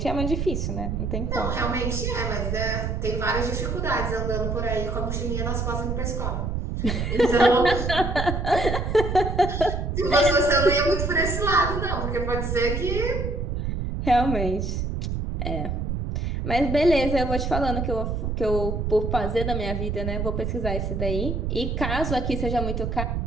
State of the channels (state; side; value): noise; right; rumble, 2 dB below the sound